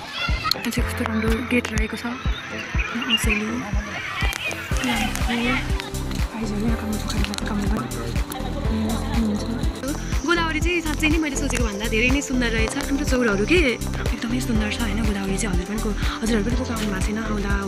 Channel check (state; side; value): identical; both; correlation 1.00